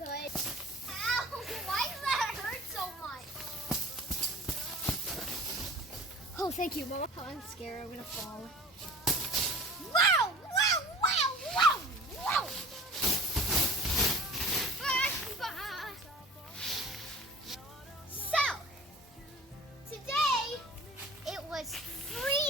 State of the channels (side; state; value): both; normal; correlation 0.41